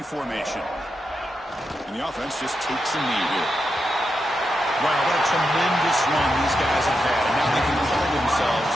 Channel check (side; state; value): both; normal; correlation 0.86